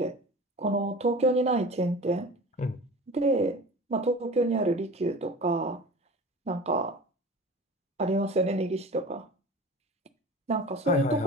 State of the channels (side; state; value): both; normal; correlation 0.37